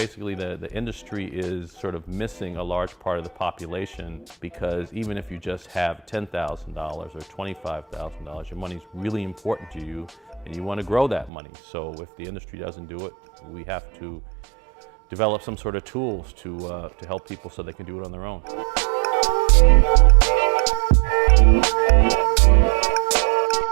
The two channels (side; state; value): left; drops out; at 11.3 s